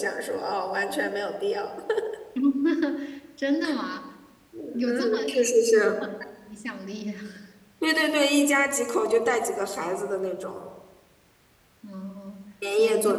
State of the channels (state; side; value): identical; both; correlation 1.00